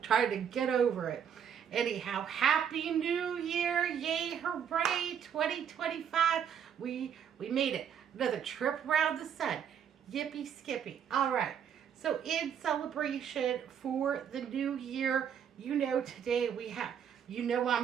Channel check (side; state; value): left; quieter; 8.3 dB